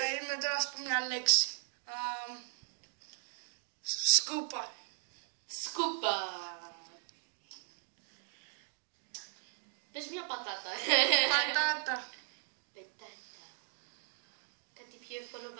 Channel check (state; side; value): silent; left; 53 dB below the other